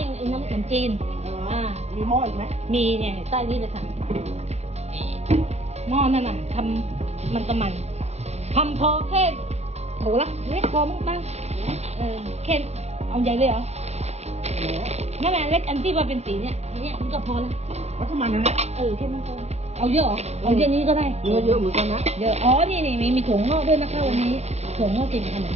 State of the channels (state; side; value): late; left; 0.31 ms